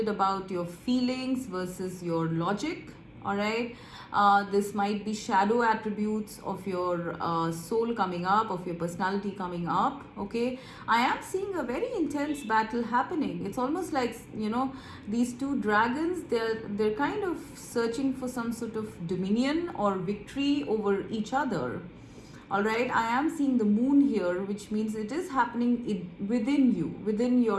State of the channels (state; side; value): identical; both; correlation 1.00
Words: about your feelings versus your logic. All right, this might be shadow attributes of your soul coming up, of your personality coming up. Okay, I am seeing a very intense battle happening. It's almost like these two dragons, they're kind of searching for some sort of dominion or victory over each other. All right, I am seeing the moon here, which means it is happening within you, within